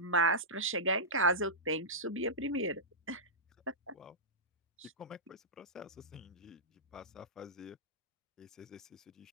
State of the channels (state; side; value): normal; both; correlation -0.14